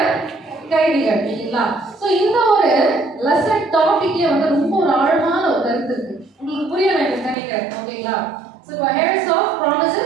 கைதிகள் இல்லைங்களா? ஸோ இந்த ஒரு லெசன் டாபிக்ல வந்து ரொம்ப ஒரு ஆழமான ஒரு கருத்து இருக்கு. உங்களுக்கு புரிய வேண்டும் நினைக்கிறேன். ஓகேங்களா? So heirs of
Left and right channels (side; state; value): left; drops out; at 7.4 s